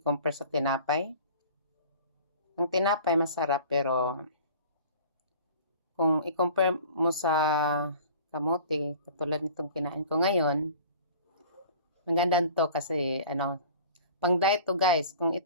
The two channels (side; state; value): both; inverted; correlation -0.45